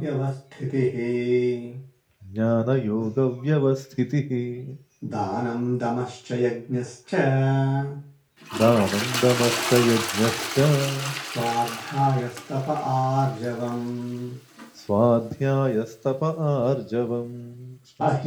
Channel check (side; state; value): both; identical; correlation 1.00